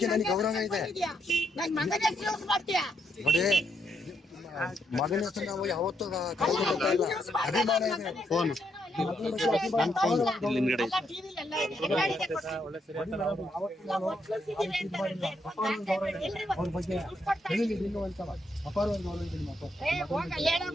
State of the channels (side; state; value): both; normal; correlation 0.77